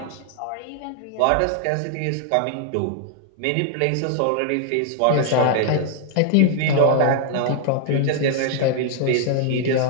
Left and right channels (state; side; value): different; both; correlation 0.00